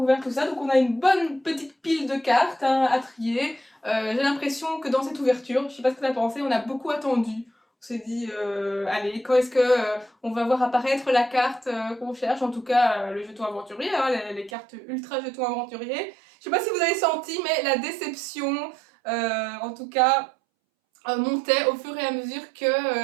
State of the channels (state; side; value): drops out; left; at 14.5 s